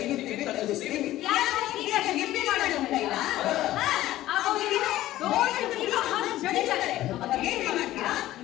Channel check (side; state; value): right; quieter; 14.9 dB